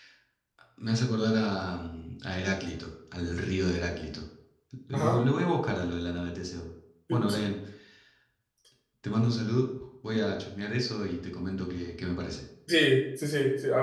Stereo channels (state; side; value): identical; both; correlation 1.00